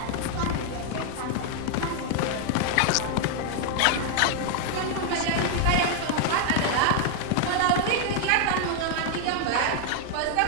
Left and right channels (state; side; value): different; both; correlation 0.00